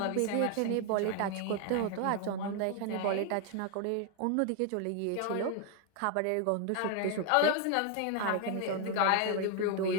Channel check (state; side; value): different; both; correlation 0.00